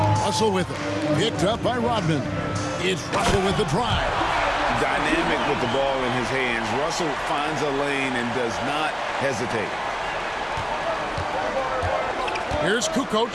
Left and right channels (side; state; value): both; identical; correlation 1.00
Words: Russell with it. Picked up by Rodman. It's Russell with the drive. Dynamic with the ball in his hands. Russell finds a lane and does not hesitate. Here's Kukoc.